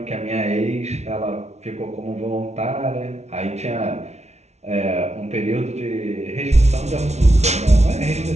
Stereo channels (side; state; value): left; late; 0.32 ms